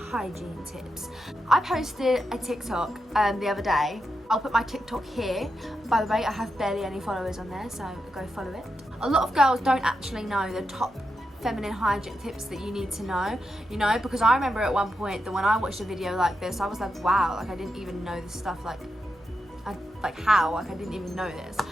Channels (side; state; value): both; normal; correlation 0.86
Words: hygiene tips. I posted a TikTok the other day. I'll put my TikTok here. By the way, I have barely any followers on there, so go follow it. A lot of girls don't actually know the top feminine hygiene tips that you need to know, because I remember at one point that when I watched a video like this, I was like, wow, like I didn't even know this stuff, I didn't even know this.